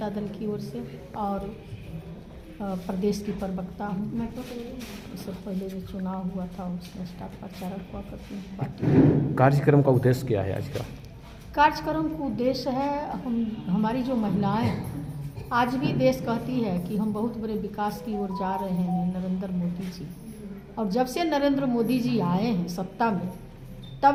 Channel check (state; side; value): identical; both; correlation 1.00